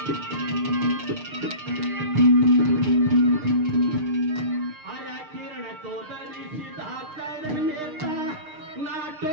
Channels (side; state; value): left; late; 6.6 ms